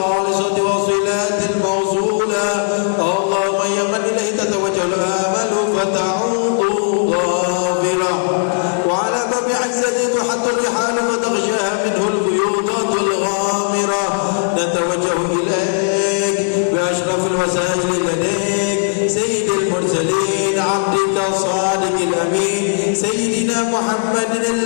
الصادق الأمين سيدنا محمد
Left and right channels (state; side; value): silent; right; digital silence